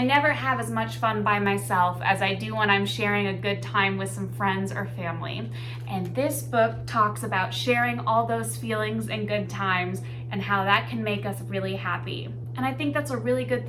never have as much fun by myself as I do when I'm sharing a good time with some friends or family. And this book talks about sharing all those feelings and good times and how that can make us really happy. And I think that's a really good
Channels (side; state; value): both; identical; correlation 1.00